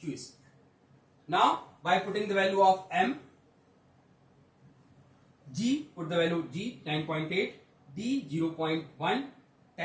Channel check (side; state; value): both; identical; correlation 1.00